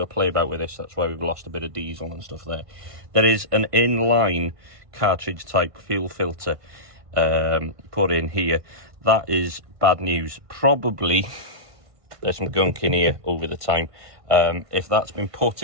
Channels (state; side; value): late; left; 1.5 ms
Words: play about with this, that's why we've lost a bit of diesel and stuff there. There is an inline cartridge type fuel filter put in here. That is bad news. Probably there's some gunk in here over the time. If that's been